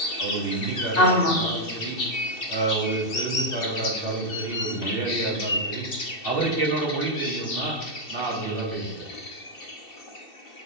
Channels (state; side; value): late; right; 2.7 ms